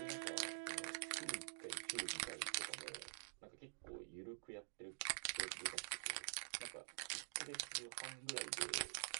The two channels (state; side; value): silent; left; digital silence